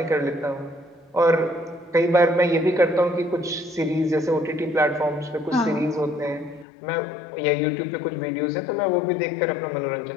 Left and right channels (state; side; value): drops out; right; at 6.7 s